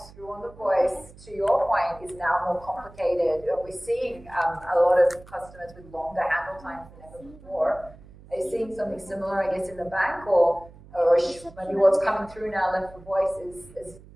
through on the voice, to your point, is now more complicated. We're seeing a lot of customers with longer handle times than ever before. Are you seeing something similar, I guess, in the bank, or maybe what's coming through now left for voice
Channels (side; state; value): right; noise; hum, 21 dB below the sound